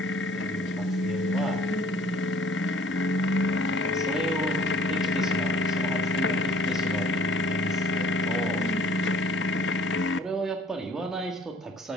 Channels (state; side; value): normal; both; correlation 0.54